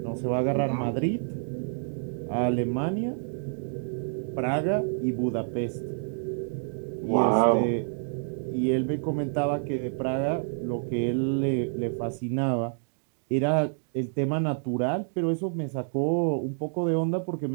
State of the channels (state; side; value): silent; left; digital silence